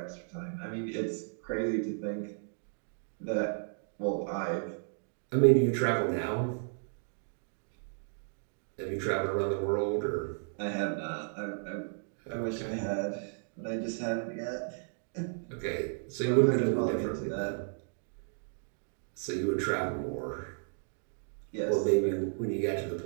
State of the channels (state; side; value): silent; left; digital silence